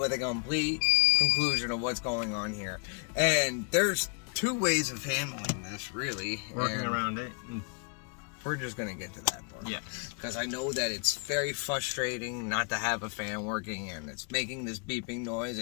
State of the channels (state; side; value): quieter; right; 36.8 dB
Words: a complete conclusion of what's going on here. And there's 2 ways of handling this, really. Working around it. We're just going to get to that part. Yes. Because I know that it's very frustrating not to have a fan working, and it's making this beeping noise,